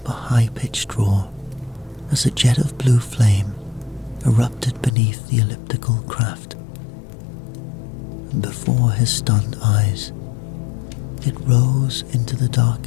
a high-pitched roar as a jet of blue flame erupted beneath the elliptical craft, and before his stunned eyes, it rose into the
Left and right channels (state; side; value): drops out; right; at 5.0 s